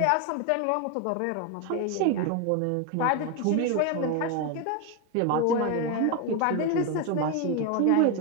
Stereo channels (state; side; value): different; both; correlation 0.01